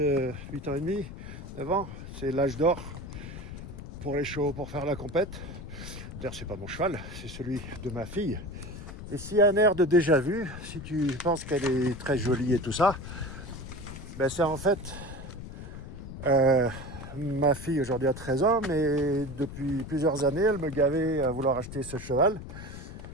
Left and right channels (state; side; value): noise; left; rumble, 11 dB below the sound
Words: 8 ans et demi, 9 ans, c'est l'âge d'or pour les chevaux, pour faire la compète. D'ailleurs, c'est pas mon cheval, c'est celui de ma fille. Et s'il y a un air de déjà vu, si tu penses qu'elle est très jolie et tout ça, ben c'est en fait ma fille aujourd'hui a 13 ans, mais depuis plusieurs années, elle me gavait à vouloir acheter ce cheval.